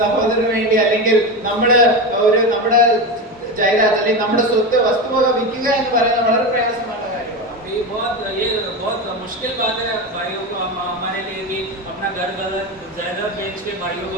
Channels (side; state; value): both; normal; correlation 0.19